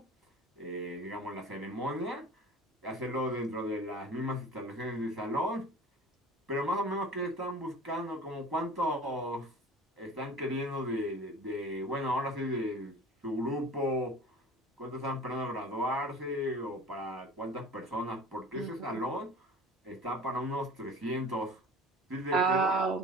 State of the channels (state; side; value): normal; both; correlation 0.41